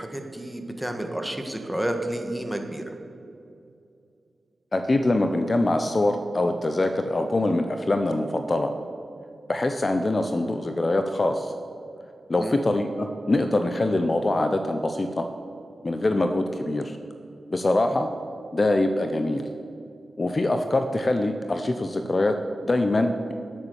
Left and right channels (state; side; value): normal; both; correlation 0.95